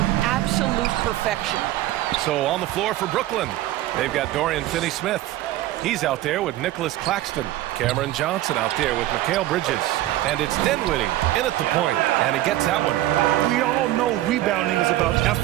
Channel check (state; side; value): quieter; left; 15.0 dB